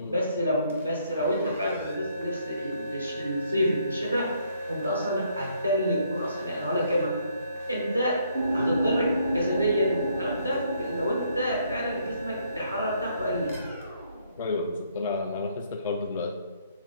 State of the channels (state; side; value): inverted; both; correlation -0.69